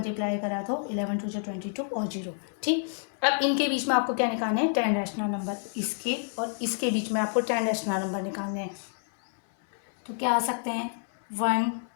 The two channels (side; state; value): right; silent; 59 dB below the other